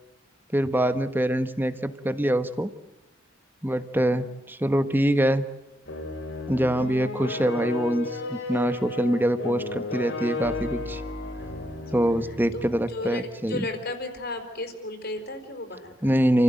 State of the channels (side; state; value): both; normal; correlation 0.81